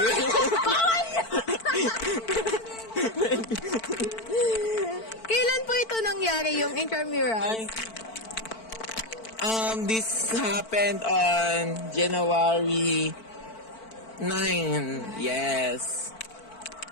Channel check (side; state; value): right; late; 4.5 ms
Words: Kailan po ito nangyari yung intramurals? This happened on January 9. Yes.